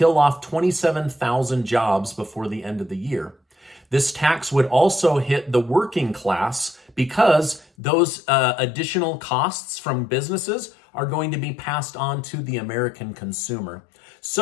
off 27,000 jobs before the end of the year. This tax would also hit the working class because those additional costs from businesses are going to be passed on to the American consumer.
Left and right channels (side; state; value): right; drops out; at 7.7 s